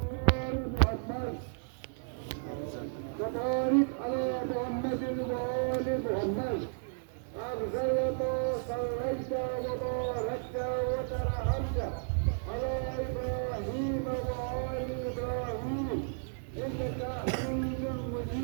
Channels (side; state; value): left; silent; digital silence